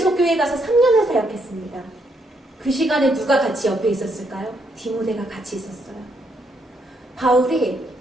교회 가서 3년을 사역했습니다. 그 시간에 누가 같이 옆에 있었을까요? 디모데가 같이 있었어요. 바울이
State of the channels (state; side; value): normal; both; correlation 0.75